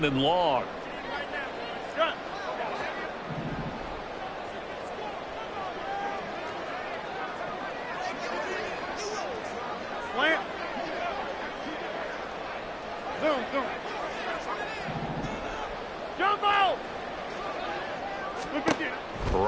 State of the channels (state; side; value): identical; both; correlation 1.00